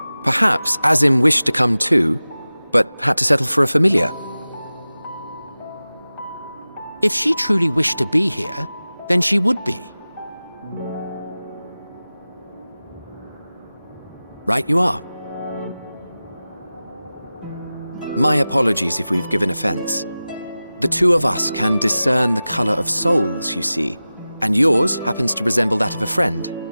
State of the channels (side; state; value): both; inverted; correlation -0.96